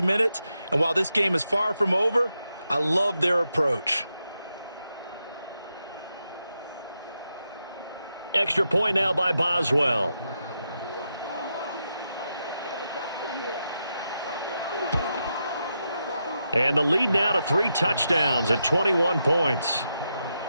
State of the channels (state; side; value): inverted; both; correlation -0.85